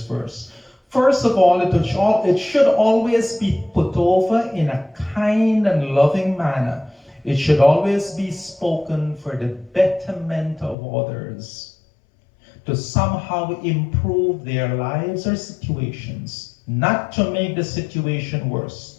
verse. First of all, it should always be put over in a kind and loving manner. It should always be spoken for the betterment of others, to somehow improve their lives or situations, not to make the situation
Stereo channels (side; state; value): right; drops out; at 10.8 s